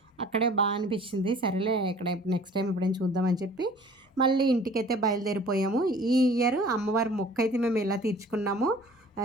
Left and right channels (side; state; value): both; normal; correlation 0.49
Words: అక్కడే బాగా అనిపించింది. సరేలే ఇక్కడ నెక్స్ట్ టైం ఎప్పుడైనా చూద్దామని చెప్పి మళ్ళీ ఇంటికైతే బయలుదేరిపోయాము. ఈ ఇయర్ అమ్మవారి మొక్క అయితే మేము ఎలా తీర్చుకున్నాము,